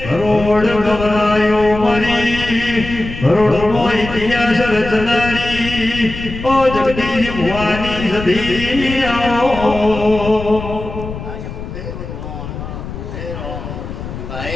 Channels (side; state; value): left; noise; rumble, 9 dB below the sound